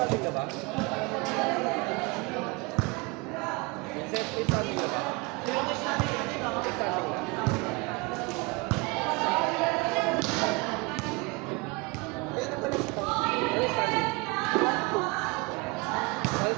ka ba? Vincent, may standing ka ba? May standing ka. Ano standing?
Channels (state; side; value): quieter; left; 27.3 dB